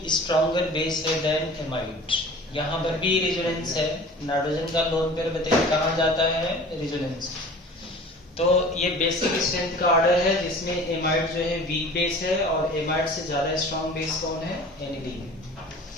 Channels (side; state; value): both; normal; correlation 0.43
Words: स्ट्रॉन्गर बेस है देन एमाइड। यहाँ पर भी रेजोनेंस है। नाइट्रोजन का लोन पेयर बताइए कहाँ जाता है, रेजोनेंस। तो ये बेसिक स्ट्रेंथ का ऑर्डर है, जिसमें एमाइड जो है वीक बेस है और एमाइड से ज्यादा स्ट्रॉन्ग बेस कौन है, एनिलीन।